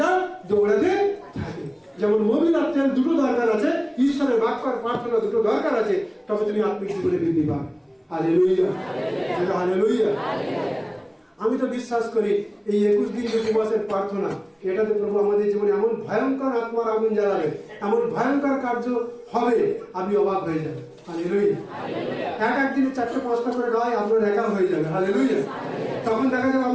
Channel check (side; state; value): both; identical; correlation 1.00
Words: দৌড়াতে থাকে। যেমন মোবিল আর তেল দুটো দরকার আছে, ঈশ্বরের বাক্য আর প্রার্থনা দুটো দরকার আছে, তবে তুমি আত্মিক জীবনে বৃদ্ধি পাবে। Hallelujah, hallelujah. আমি তো বিশ্বাস করি এই 21 দিন যে উপবাসের প্রার্থনা, এটাতে প্রভু আমাদের জীবনে এমন ভয়ঙ্কর আত্মার আগুন জ্বালাবে, এমন ভয়ঙ্কর কার্য হবে, আপনি অবাক হয়ে যাবেন। হালেলুয়া। এক দিনে 4-5টা করে গায়ে আপনার একা হয়ে যাবে। হালেলুয়া। তখন দেখা যাবে